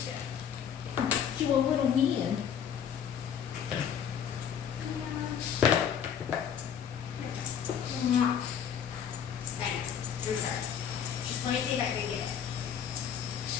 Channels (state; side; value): quieter; right; 8.3 dB